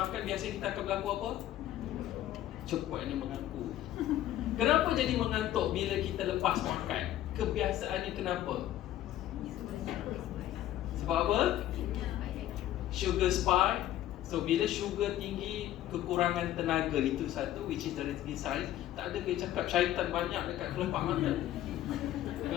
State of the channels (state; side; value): quieter; right; 13.1 dB